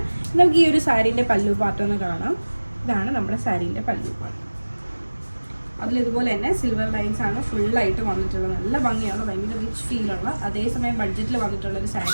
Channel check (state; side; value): inverted; both; correlation -1.00